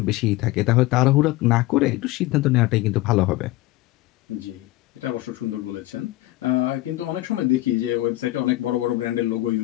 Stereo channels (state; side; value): quieter; right; 17.6 dB